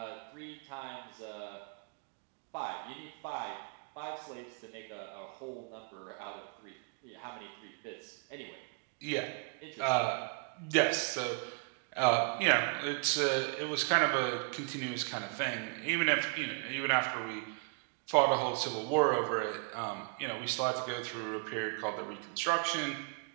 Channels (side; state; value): left; quieter; 37.8 dB